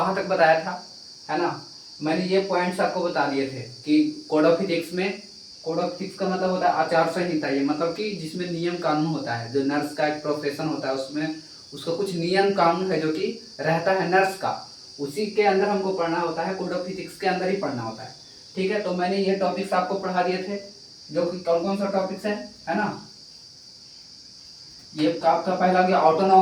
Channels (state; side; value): identical; both; correlation 1.00